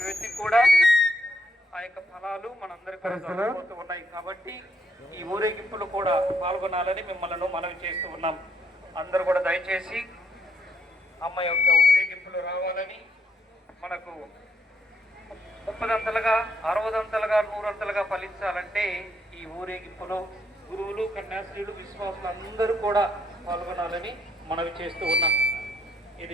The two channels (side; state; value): both; normal; correlation 0.73